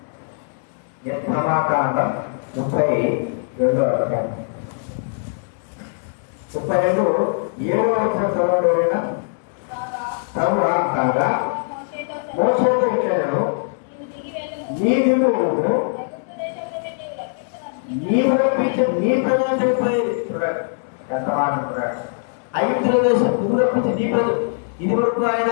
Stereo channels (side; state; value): right; silent; 65 dB below the other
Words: నిర్గమకాండం 32వ అధ్యాయం 32 7వ వచనం చదవడం. కాగా మోషేతో ఇచ్చాను, నీవు రప్పించి నీ ప్రజలు చనిపోయేది. చూడండి ఎంత మాట అంటున్నాడు. ఐగుప్తుల దేశం నువ్వు రప్పించి నీ ప్రజలు. ఇది వరకు ఆయన